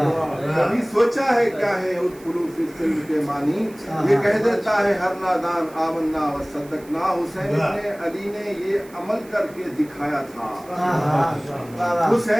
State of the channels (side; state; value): right; noise; hiss, 24 dB below the sound